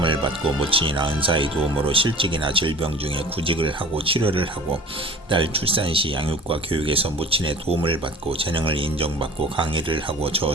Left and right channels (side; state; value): both; normal; correlation 0.43